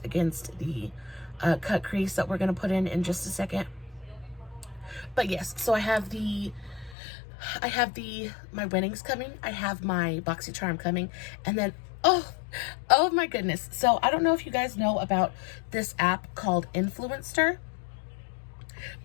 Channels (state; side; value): drops out; right; at 7.0 s